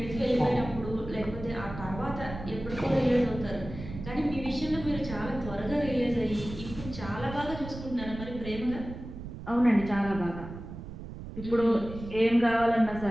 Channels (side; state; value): right; noise; rumble, 11 dB below the sound